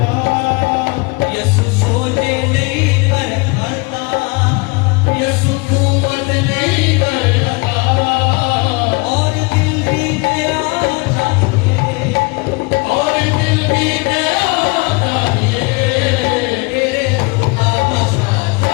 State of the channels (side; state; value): right; quieter; 28.2 dB